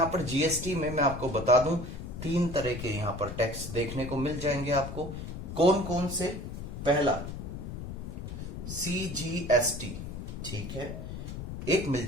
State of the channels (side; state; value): left; noise; rumble, 8 dB below the sound